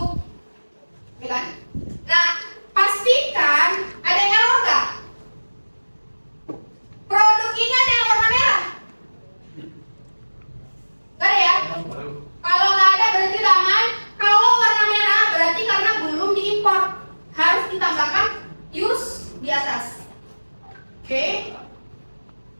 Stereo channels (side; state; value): both; inverted; correlation -1.00